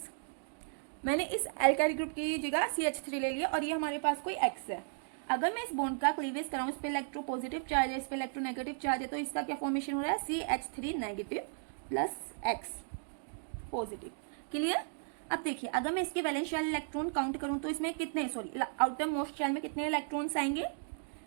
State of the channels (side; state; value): left; silent; digital silence